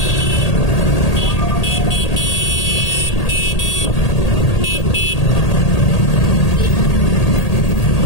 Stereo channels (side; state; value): right; late; 1.8 ms